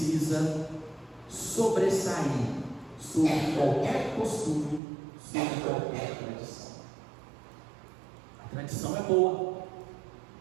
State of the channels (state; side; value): drops out; left; at 4.8 s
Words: sobressair sobre qualquer costume, sobre qualquer tradição. A tradição é boa,